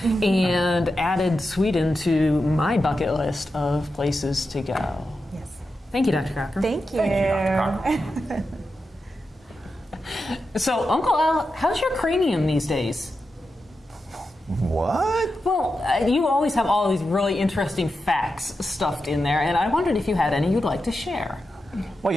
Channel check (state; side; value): normal; both; correlation 0.89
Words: and added Sweden to my bucket list of places to go. yes. Thank you, Dr. Cochran. Thank you. Thank you, Dr. Cochran. So, Uncle Al, how's your cranium these days? What? Well, you always have all these really interesting facts stuffed in there, and I wondered if you had any you'd like to share. Well,